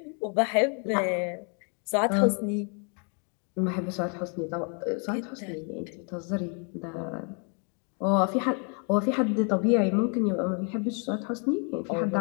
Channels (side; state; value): right; quieter; 38.9 dB